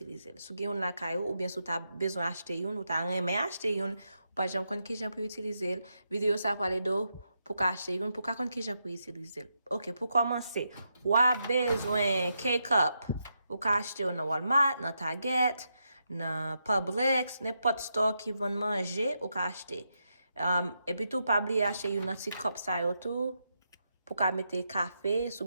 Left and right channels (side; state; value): both; inverted; correlation -0.83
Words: l. Sou gen yon la kayo, ou bien sou ta bezon achete yon, ou ta reme achete yon, ou pa jan kon ki jan pou utilize l, video sa pale do pou ka achete yon, pou ka kon ki jan pou utilize l. Ok, pou komanse, wap bezwen K-Cup, ou ka achete yon nan Walmart, nan Target, nan Publix, nepot store ki von manje, ou ka achete. Et puis tout, pas oublier acheter une petite cup ça yo tout pour ka mettre café,